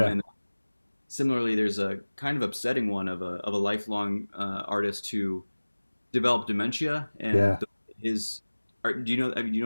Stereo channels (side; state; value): both; inverted; correlation -1.00